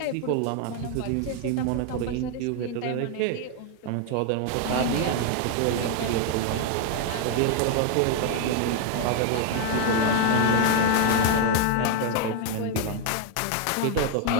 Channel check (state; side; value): different; both; correlation 0.00